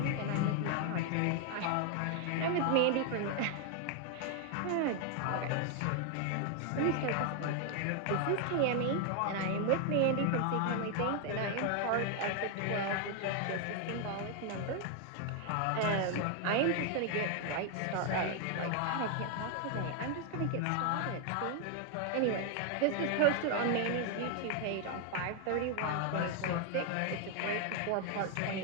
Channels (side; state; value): both; different; correlation 0.00